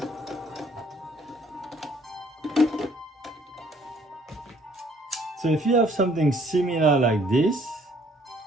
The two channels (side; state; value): both; normal; correlation 0.60